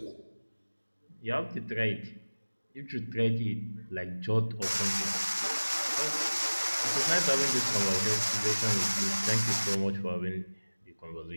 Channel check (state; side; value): inverted; both; correlation -1.00